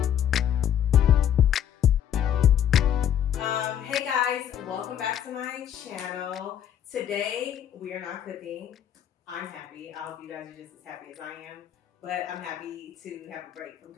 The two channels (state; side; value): quieter; right; 9.9 dB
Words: Hey guys, welcome back to my channel. Today we are not cooking. I'm happy. I hope you guys are just as happy as I am, but I'm happy to have a break from